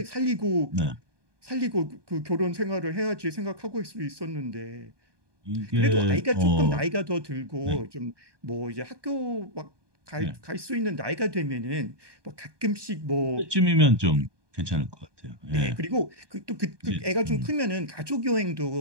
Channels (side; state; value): left; late; 1.2 ms